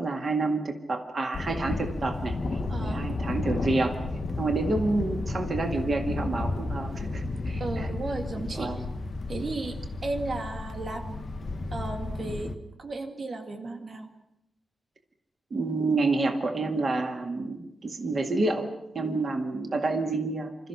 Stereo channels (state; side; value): normal; both; correlation 0.85